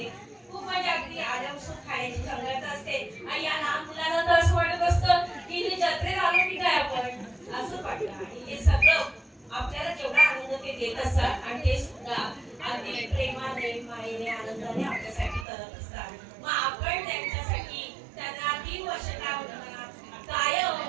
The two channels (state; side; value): drops out; left; at 15.5 s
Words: खूप म्हणजे अगदी आल्यापासून खाण्याची चंगळत असते आणि या लहान मुलांना तर असं वाटत असतं की जत्रेत आलो की काय आपण असं वाटतं. आणि हे सगळं आपल्याला जेवढा आनंद ते देत असतात आणि ते सुद्धा अगदी प्रेमाने, मायेने, आनंदाने आपल्यासाठी करत असतात. मग आपण त्यांच्यासाठी त्यांना 3 वर्ष कायम